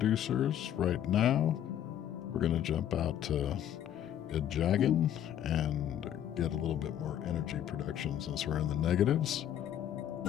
right now, we're going to jump out to Jagan and get a little bit more energy production since we're in the negatives.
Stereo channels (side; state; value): right; quieter; 10.6 dB